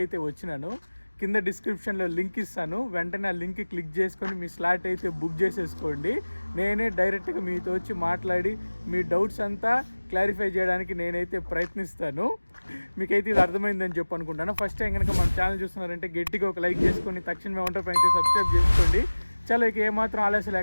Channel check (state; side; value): inverted; both; correlation -1.00